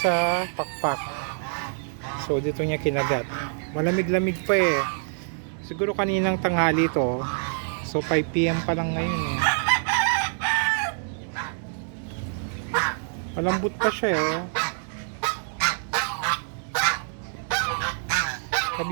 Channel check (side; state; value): left; silent; digital silence